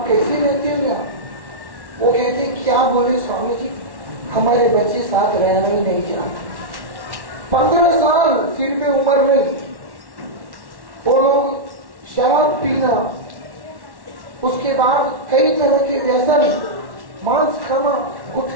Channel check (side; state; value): left; late; 1.1 ms